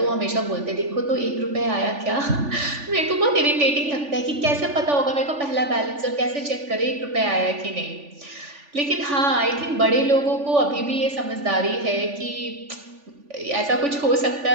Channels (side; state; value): left; late; 3.5 ms